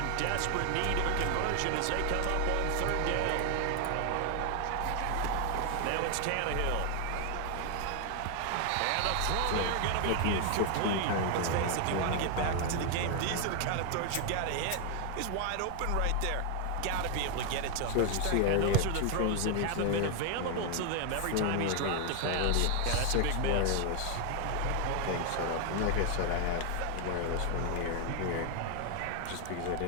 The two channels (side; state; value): both; different; correlation 0.00